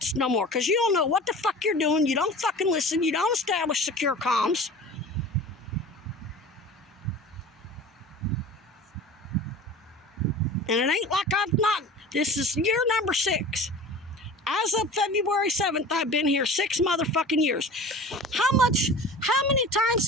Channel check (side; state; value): both; normal; correlation 0.38